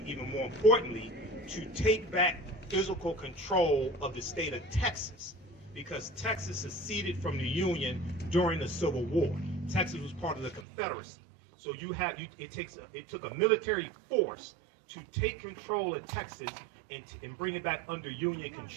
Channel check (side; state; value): left; drops out; at 10.7 s